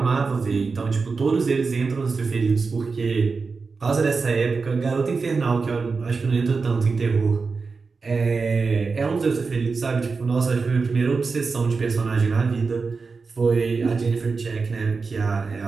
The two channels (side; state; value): left; quieter; 4.6 dB